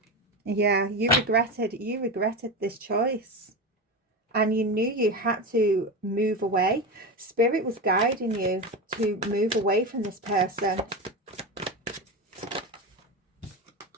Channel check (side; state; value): both; normal; correlation 0.20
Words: Yeah, you regretted this choice. And you knew you had to move away. Spirit was guiding you to move away from this person.